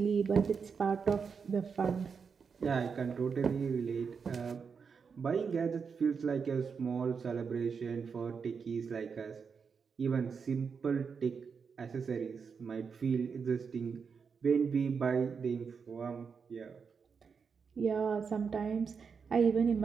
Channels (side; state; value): left; quieter; 5.9 dB